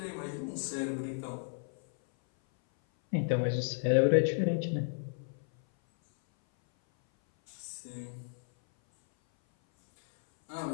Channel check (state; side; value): silent; right; 56 dB below the other